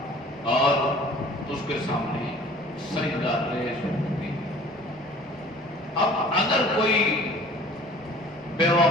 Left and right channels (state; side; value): noise; right; rumble, 27 dB below the sound